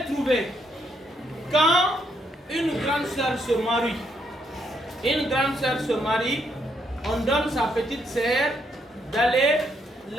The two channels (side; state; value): both; normal; correlation 0.75